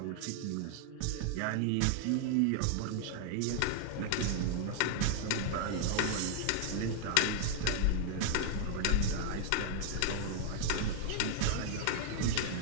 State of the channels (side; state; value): both; different; correlation 0.00